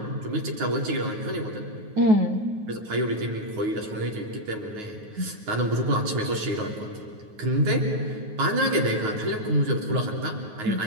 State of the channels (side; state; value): left; late; 9.4 ms